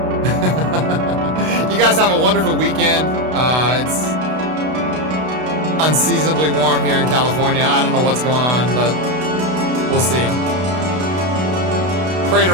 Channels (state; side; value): late; left; 32 ms